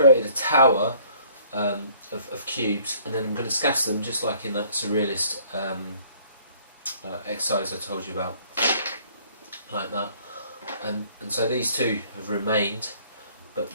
a tower of cubes, and then I'm going to scatter them just like in that surrealist exercise I told you about, like that. And so these two have remained, but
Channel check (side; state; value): both; inverted; correlation -0.58